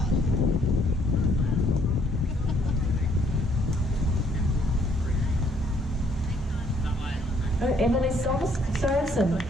Oh, Emily Sorensen.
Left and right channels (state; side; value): normal; both; correlation 0.66